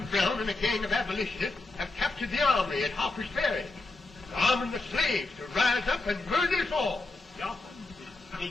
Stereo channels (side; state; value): right; quieter; 3.2 dB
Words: Brown and a gang of abolitionists have captured the armory at Harper's Ferry, arming the slaves to rise up and murder us all. Yeah, they